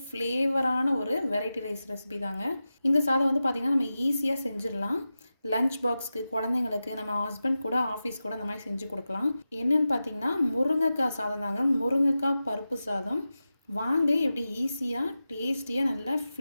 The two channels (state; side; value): inverted; both; correlation -0.93